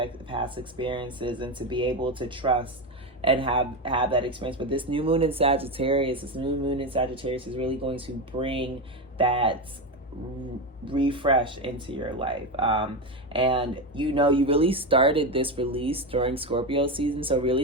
past experiences and to be able to trust and have that experience. But this new moon in Sagittarius is really going to bring that refresh into your life. And you really started this release during Scorpio season. So really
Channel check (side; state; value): both; normal; correlation 0.15